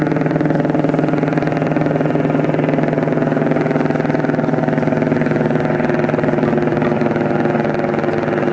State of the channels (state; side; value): identical; both; correlation 1.00